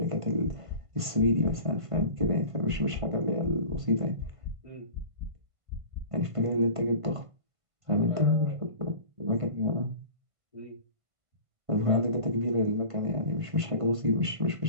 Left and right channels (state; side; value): late; left; 1.5 ms